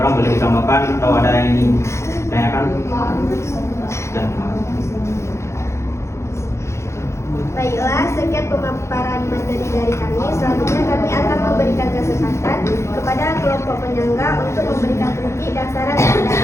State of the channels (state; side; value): late; right; 0.13 ms